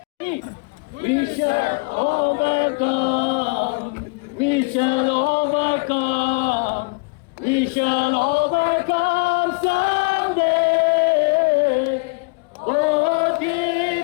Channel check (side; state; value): right; quieter; 31.2 dB